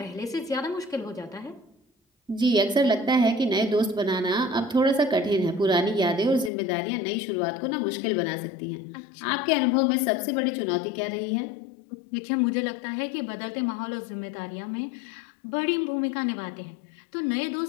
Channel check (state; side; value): drops out; right; at 6.5 s